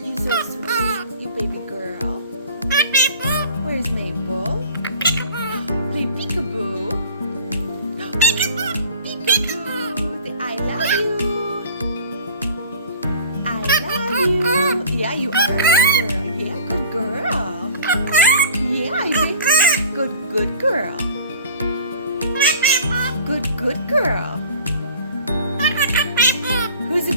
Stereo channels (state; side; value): inverted; both; correlation -0.44